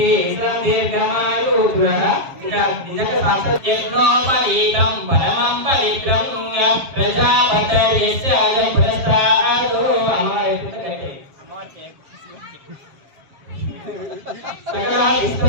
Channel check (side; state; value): left; late; 7.5 ms